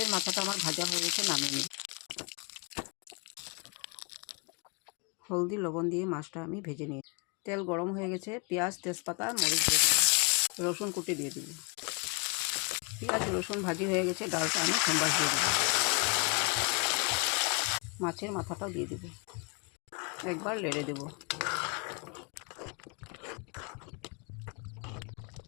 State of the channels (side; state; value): right; quieter; 34.7 dB